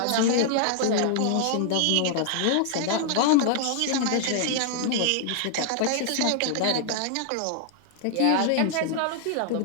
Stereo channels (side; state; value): both; different; correlation 0.00